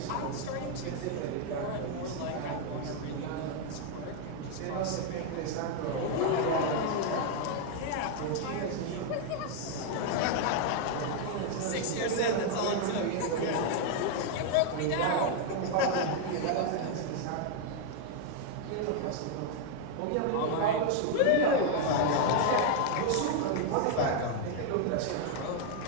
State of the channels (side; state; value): both; different; correlation 0.00